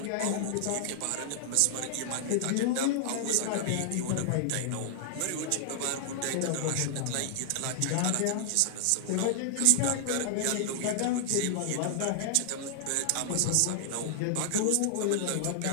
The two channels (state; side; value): different; both; correlation -0.01